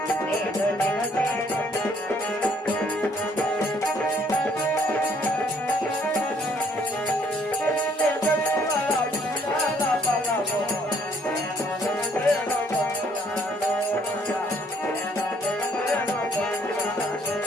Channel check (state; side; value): normal; both; correlation 0.64